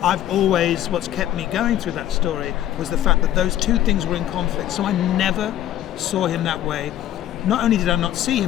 what's kept me going through that story was the fact that those two things were in conflict. So I never saw him that way. Not only did I not see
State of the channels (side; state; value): right; quieter; 12.5 dB